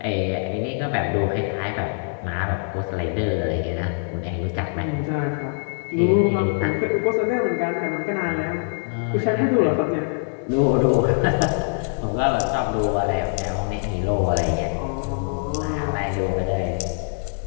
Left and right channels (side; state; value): right; silent; 63 dB below the other